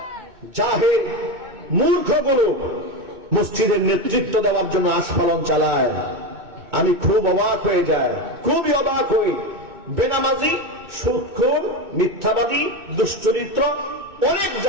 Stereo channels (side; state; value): left; late; 2.2 ms